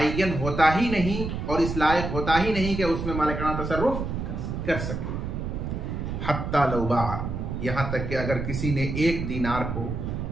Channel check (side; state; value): right; noise; rumble, 4 dB below the sound